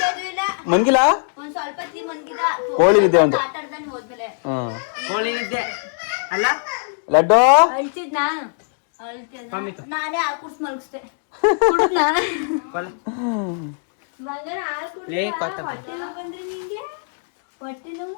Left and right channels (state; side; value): silent; right; digital silence